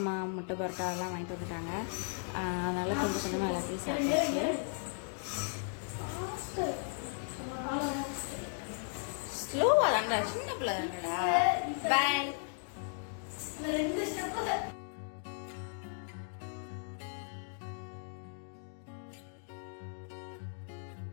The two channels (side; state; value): right; silent; 54 dB below the other